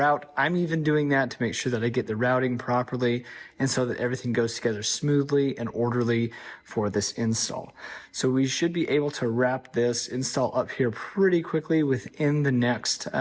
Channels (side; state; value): both; identical; correlation 1.00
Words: I'm even doing that to make sure that I get the routing properly and so that everything goes together smoothly and orderly for this install. So we should be able to wrap this install up here pretty quickly within the next